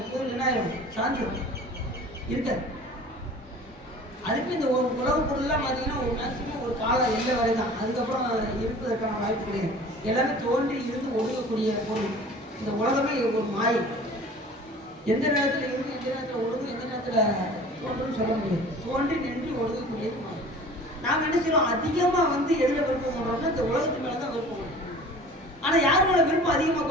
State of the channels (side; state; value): both; normal; correlation 0.44